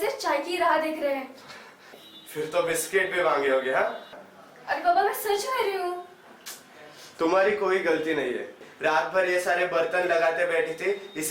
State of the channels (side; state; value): both; identical; correlation 1.00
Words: चाय की राह देख रहे हैं। फिर तो बिस्किट भी मांगे होगे। हाँ, अरे बाबा, मैं सच कह रही हूँ। तुम्हारी कोई गलती नहीं है। रात भर ये सारे बर्तन लगाते बैठी थी,